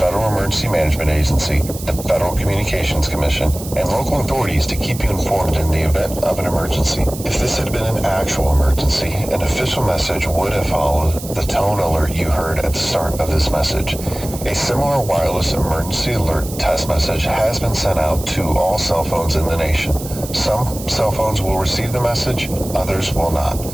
Emergency Management Agency, the Federal Communications Commission, and local authorities to keep you informed in the event of an emergency. If this had been an actual emergency, an official message would have followed the tone alert you heard at the start of this message. A similar wireless emergency alert test message has been sent out to all cell phones in the nation. Some cell phones will receive the message, others will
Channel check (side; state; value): right; noise; hiss, 13 dB below the sound